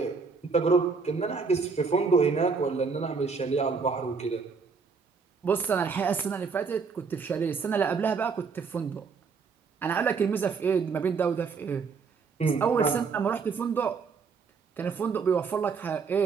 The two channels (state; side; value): quieter; left; 5.2 dB